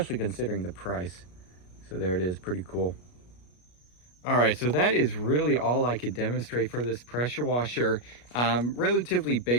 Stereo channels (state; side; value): late; right; 33 ms